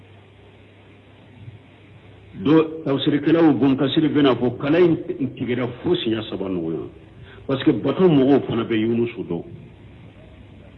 do tawsirikala u bon kasiri bena fo kala intigira fosi ya sabanu yo parce que bato mogo fana be yunusu do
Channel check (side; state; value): both; identical; correlation 1.00